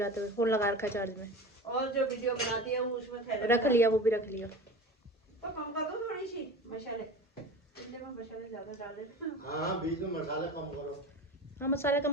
हुए। फोन लगा रखा है चार्ज में, और जो वीडियो बनाती है वो उसमें थैले रख लिया, वो भी रख लिया। तो कम कर दो थोड़ी सी मसाले, इतने में मसाले ज्यादा डाल देते। हाँ, बीच में मसाला कम करो। हाँ मसाले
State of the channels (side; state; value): both; normal; correlation 0.33